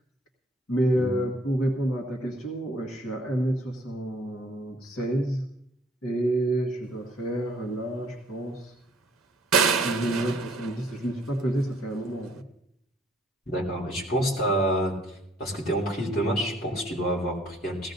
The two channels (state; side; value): normal; both; correlation 0.61